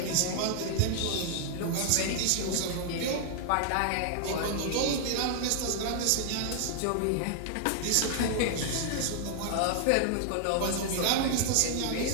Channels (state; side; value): different; both; correlation 0.00